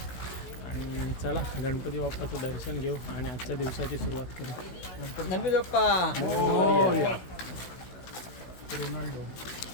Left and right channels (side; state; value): right; late; 16 ms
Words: आणि चला गणपती बाप्पाचं दर्शन घेऊ आणि आजच्या दिवसाची सुरुवात करू. गणपती बाप्पा. रोनाल्डो.